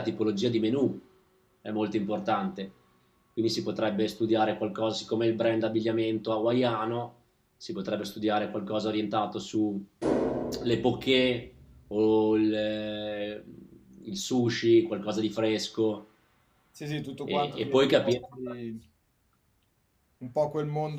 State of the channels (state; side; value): identical; both; correlation 1.00